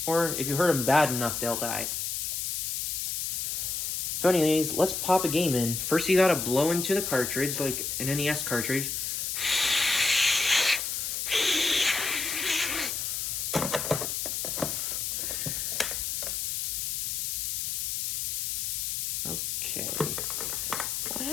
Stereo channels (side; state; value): left; noise; hiss, 1 dB below the sound